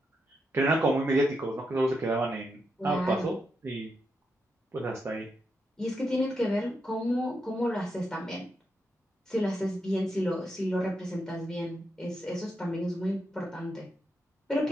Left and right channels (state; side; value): normal; both; correlation 0.84